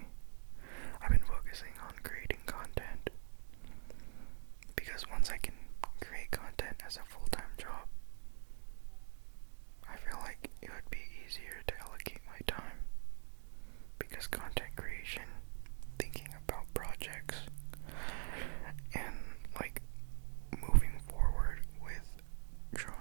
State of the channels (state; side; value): silent; left; digital silence